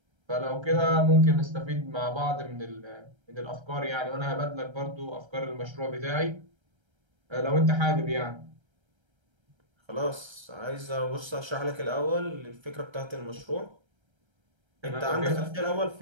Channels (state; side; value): late; left; 1.3 ms